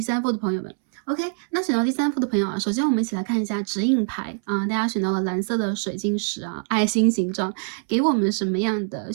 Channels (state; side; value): silent; left; 63 dB below the other